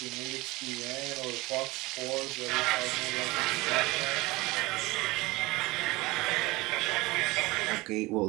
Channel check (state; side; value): quieter; left; 22.0 dB